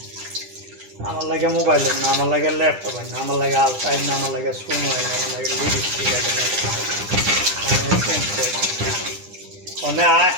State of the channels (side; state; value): left; late; 9.9 ms